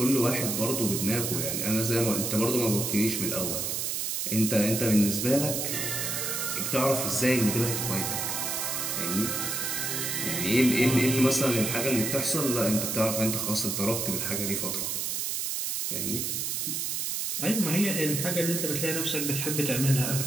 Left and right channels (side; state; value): right; noise; hiss, 1 dB below the sound